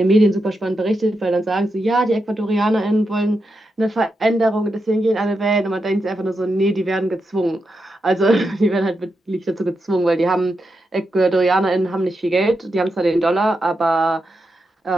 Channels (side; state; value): both; normal; correlation 0.86